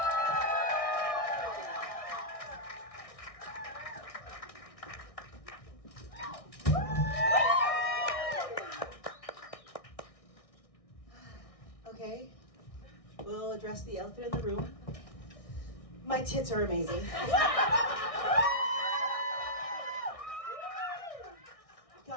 Okay, we'll address the elephant in the room. My tits are amazing.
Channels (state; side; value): late; right; 1.6 ms